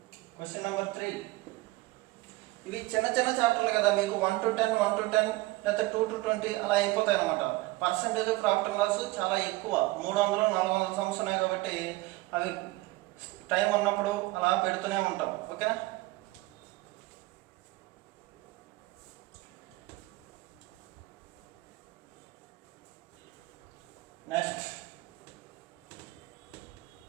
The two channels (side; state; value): left; quieter; 20.5 dB